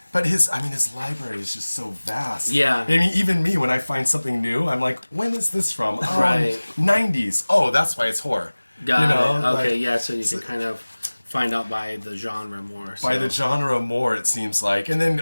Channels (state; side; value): inverted; both; correlation -1.00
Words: his library is just so vast. Yeah. I mean, even me, when I find something new, I'm like, when is this from? Right. 90s. Oh, that's why it's horror. Got it. Okay, yeah, so you can kind of find out by the genre more. By the genre more, it seems like. And then,